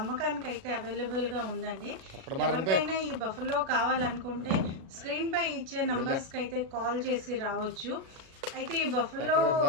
అయితే అవైలబుల్గా ఉందండి. ఎవరికైనా ఈ బఫెలో కావాలనుకుంటే స్క్రీన్ పై ఇచ్చే నంబర్స్కి అయితే కాల్ చేసి రావచ్చు. అయితే ఈ బఫెలో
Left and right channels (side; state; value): left; late; 37 ms